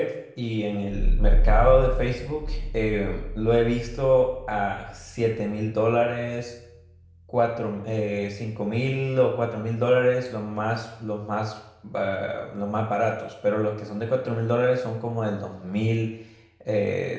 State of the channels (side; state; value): both; identical; correlation 1.00